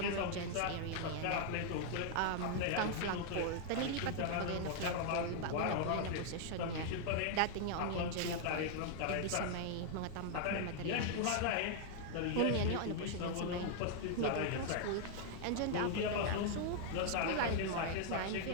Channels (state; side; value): different; both; correlation 0.00